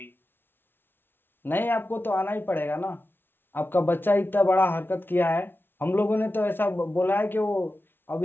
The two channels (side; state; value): right; late; 0.10 ms